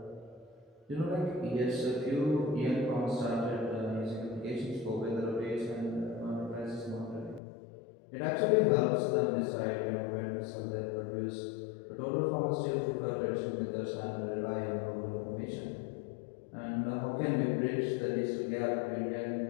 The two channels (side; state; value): right; drops out; at 7.4 s